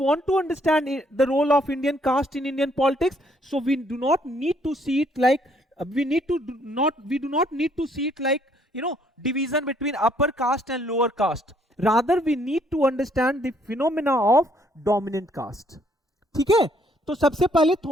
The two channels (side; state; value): both; normal; correlation 0.67